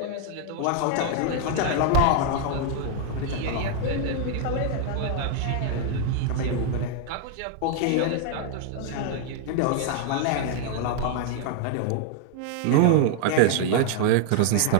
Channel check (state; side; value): different; both; correlation 0.00